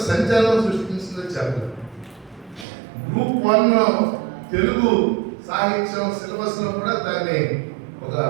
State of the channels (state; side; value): drops out; left; at 2.7 s